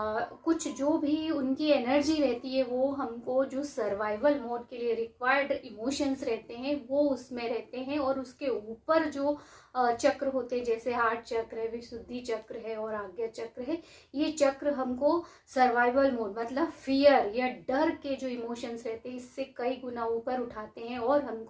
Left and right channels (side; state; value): both; identical; correlation 1.00